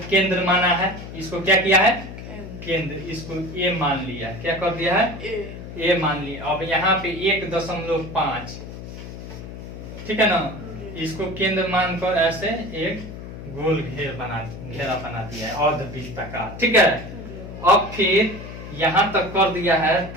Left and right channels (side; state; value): left; noise; hum, 11 dB below the sound